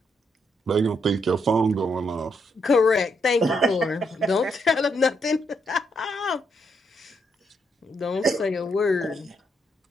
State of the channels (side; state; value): both; normal; correlation 0.77